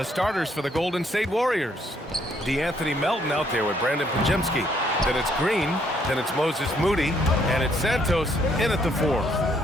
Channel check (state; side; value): normal; both; correlation 0.69